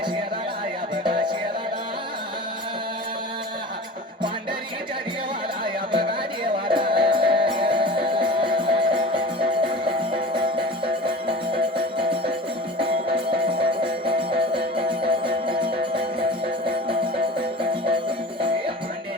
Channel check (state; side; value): normal; both; correlation 0.37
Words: शहराला या बघा